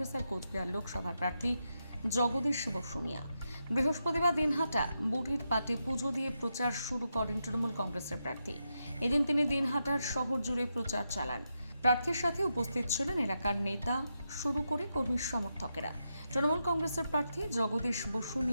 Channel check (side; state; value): both; inverted; correlation -0.85